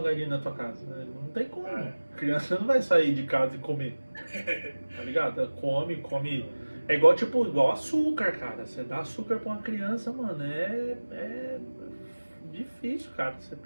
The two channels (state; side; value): inverted; both; correlation -1.00